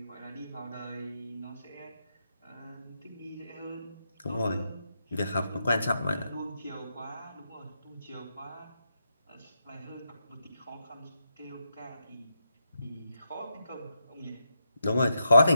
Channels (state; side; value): inverted; both; correlation -0.83